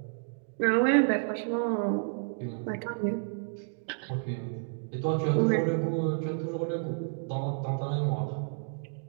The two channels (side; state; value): left; silent; digital silence